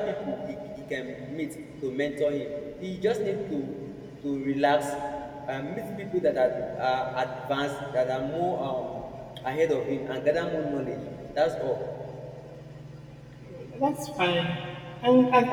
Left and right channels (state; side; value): identical; both; correlation 1.00